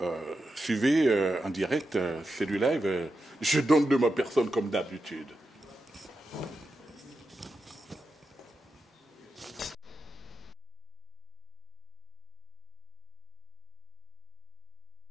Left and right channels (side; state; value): both; normal; correlation 0.88